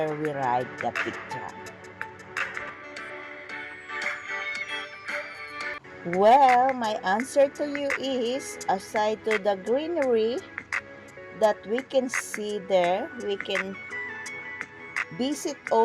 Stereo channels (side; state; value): both; identical; correlation 1.00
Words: we ride the peak tram? Well, my answer to you is, aside to the greenery that we can see there, we can visit